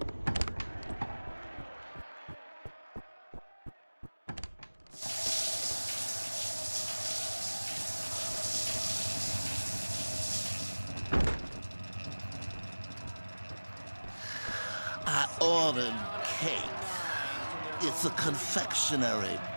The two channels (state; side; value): inverted; both; correlation -1.00